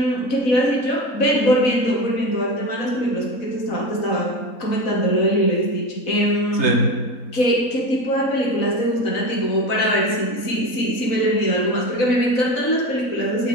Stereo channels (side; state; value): right; late; 4.0 ms